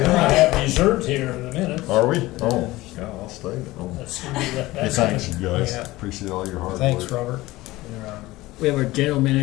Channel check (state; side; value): quieter; right; 18.8 dB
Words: have dessert here in a minute. Are we? Oh, yeah, I'll stay. Oh. That's gonna be that- Hey, thanks, you guys. Yeah. Appreciate all your hard Thanks, work. Robert. We have our general